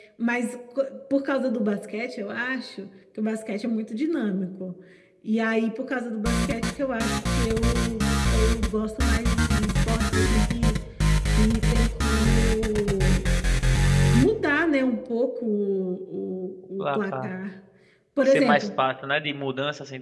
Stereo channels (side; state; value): both; identical; correlation 1.00